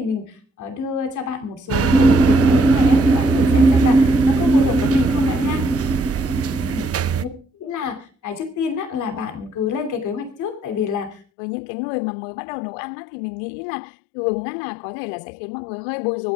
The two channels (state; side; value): drops out; right; at 11.2 s